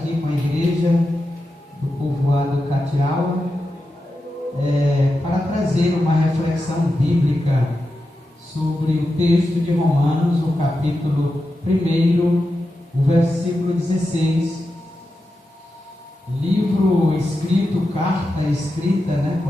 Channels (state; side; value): normal; both; correlation 0.90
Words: com a igreja do povoado Catiaua, para trazer uma reflexão bíblica sobre o texto de Romanos, o capítulo 1, o versículo 16, livro escrito, carta escrita,